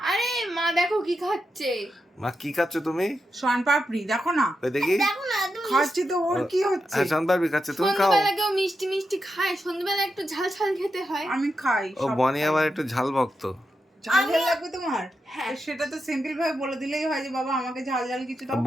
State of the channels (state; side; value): normal; both; correlation 0.87